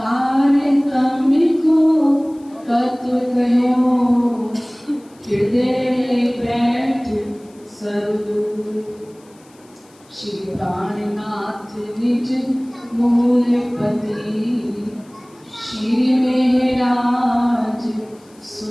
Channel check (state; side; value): noise; left; hiss, 30 dB below the sound